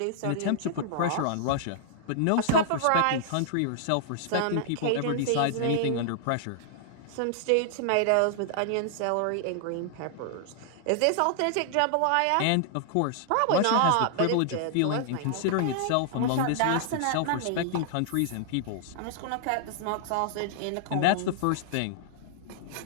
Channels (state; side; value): different; both; correlation -0.01